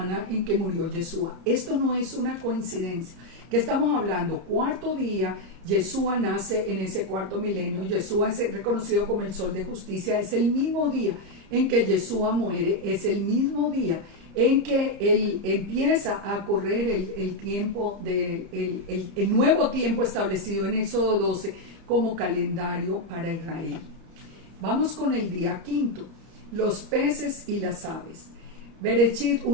en que murió Yeshua. Esto no es una coincidencia. ¿Qué estamos hablando? Cuarto día, Yeshua nace en ese cuarto milenio. Yeshua es reconocido como el sol de justicia. Es el mismo día en que Yeshua muere, es el mismo día en que él empieza a correr el tiempo, el nuevo tiempo establecido en Éxodo 12 como calendario para Israel. Vamos con el día quinto, los peces y las aves. Bereshit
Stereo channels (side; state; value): left; late; 30 ms